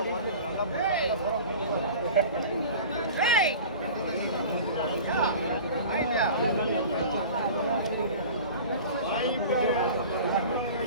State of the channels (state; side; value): inverted; both; correlation -0.38